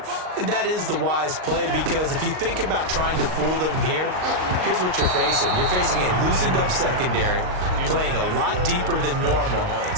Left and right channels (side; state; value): left; late; 38 ms